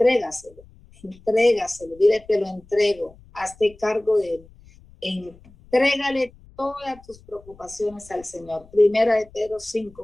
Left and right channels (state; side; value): noise; left; rumble, 25 dB below the sound